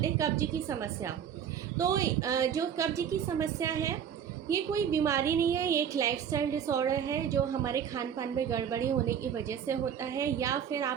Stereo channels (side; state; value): left; quieter; 8.5 dB